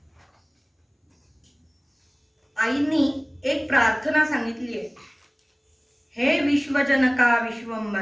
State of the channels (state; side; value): identical; both; correlation 1.00